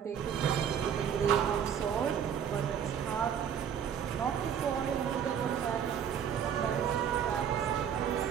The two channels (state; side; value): quieter; left; 8.3 dB